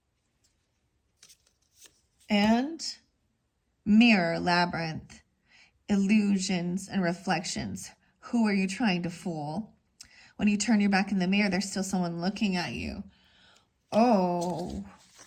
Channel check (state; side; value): identical; both; correlation 1.00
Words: And mirror, labyrinth, illusions and reflections. Who are you trying to fool? When you turn your back in the mirror, there's still someone looking at you. Oh.